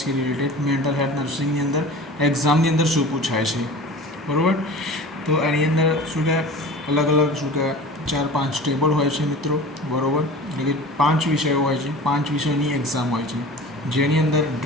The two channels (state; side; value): normal; both; correlation 0.38